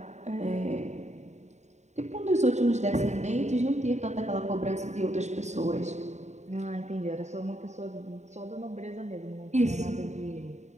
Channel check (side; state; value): left; late; 0.33 ms